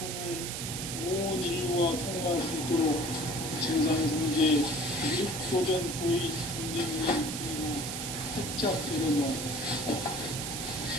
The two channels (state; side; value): noise; right; hiss, 5 dB below the sound